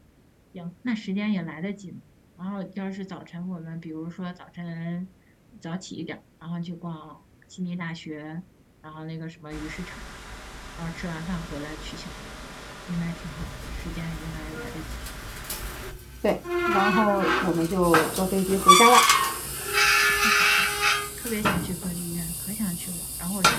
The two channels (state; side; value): identical; both; correlation 1.00